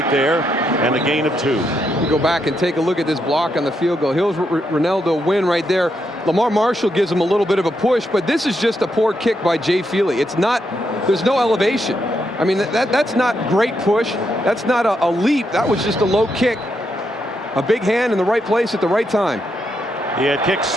there, and a gain of 2. You go back and take a look at this block on the field goal. Here's Ronaldo Wynn right there. Lamar Marshall gives him a little bit of a push, but this is just a poor kick by Jay Feely. It's not, there's no elevation. I mean, that's not great push. That's not a leap. That was just a low kick. A big hand in the right place at the right time. He had kicked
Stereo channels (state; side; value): normal; both; correlation 0.80